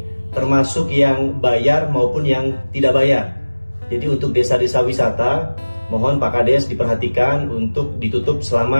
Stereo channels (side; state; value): both; inverted; correlation -1.00